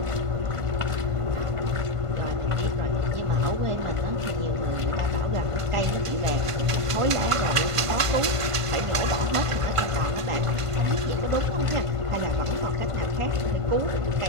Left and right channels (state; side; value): late; left; 1.5 ms